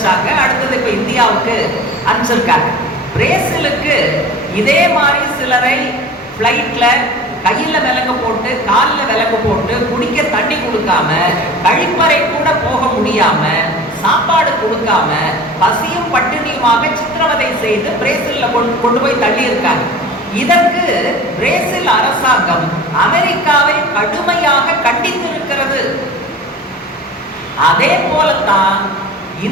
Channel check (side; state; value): both; normal; correlation 0.39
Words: அடுத்தது இப்ப இந்தியாவுக்கு அனுப்பிச்சிருக்காங்க. பிரேசிலுக்கு இதே மாதிரி சிலரை பிளைட்ல கையில விலங்கு போட்டு காலில் விலங்கு போட்டு குடிக்க தண்ணி கொடுக்காம, கழிப்பறை கூட போக முடியாம, சாப்பாடு கொடுக்காம, பசியும் பட்டினியுமாக சித்திரவதை செய்து பிரேசில்ல கொண்டு போய் தள்ளி இருக்காங்க. இதற்கு பிரேசில் அரசாங்கம் அமெரிக்காவை கடுமையாக கண்டித்திருக்கிறது. அதே போலத்தான்